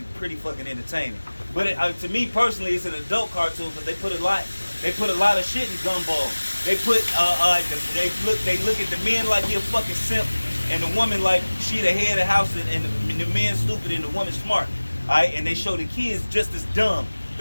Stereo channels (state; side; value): inverted; both; correlation -1.00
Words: pretty fucking entertaining. But to me personally, it's an adult cartoon because they put a lot of shit in Gumball. They look at the men like he a fucking simp, and the woman like she the head of the house, and the man stupid and the woman smart. Alright, and they show the kids just as dumb.